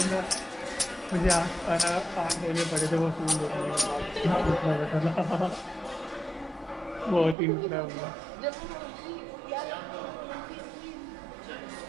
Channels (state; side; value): drops out; left; at 7.4 s